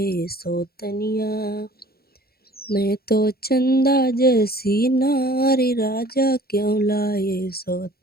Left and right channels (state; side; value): late; right; 0.45 ms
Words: सौतनिया। मैं तो चंदा जैसी नारी राजा क्यों लाए